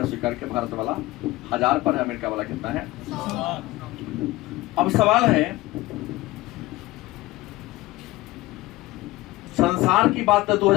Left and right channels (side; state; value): right; quieter; 18.8 dB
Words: स्वीकार किया। भारत वाला 1000 पर है, अमेरिका वाला कितना है। अब सवाल है, संसार की बात तो